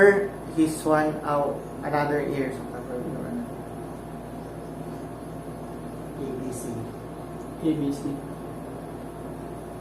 his one out, another ear. So cover your ABC. ABC.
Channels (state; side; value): identical; both; correlation 1.00